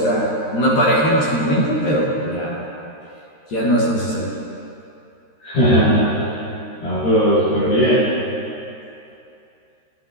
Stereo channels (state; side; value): late; right; 13 ms